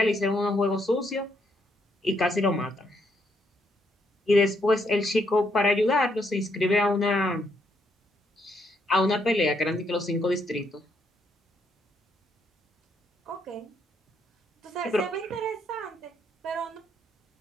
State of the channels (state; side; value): normal; both; correlation 0.74